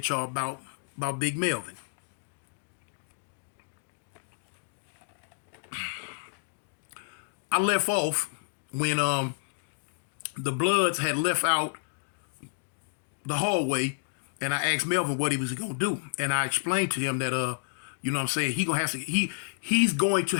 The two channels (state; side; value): silent; right; digital silence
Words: y'all about Big Melvin. I left off when the Bloods had left out the hallway, and I asked Melvin what he was gonna do, and I explained to him that you know what I'm saying, he's going to